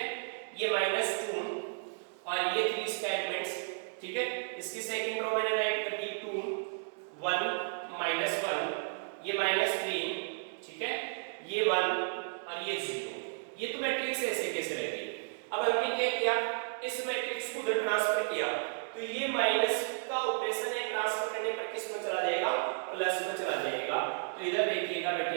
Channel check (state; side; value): silent; left; digital silence